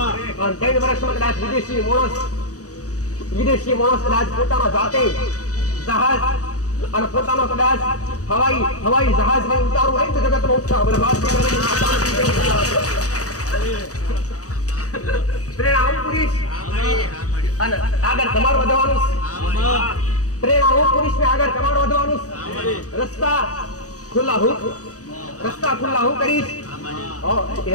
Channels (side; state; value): right; late; 0.66 ms